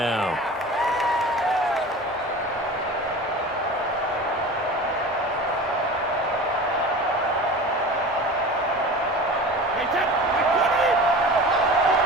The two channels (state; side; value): normal; both; correlation 0.35